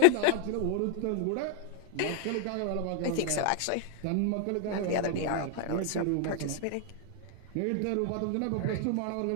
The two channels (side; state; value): both; different; correlation 0.00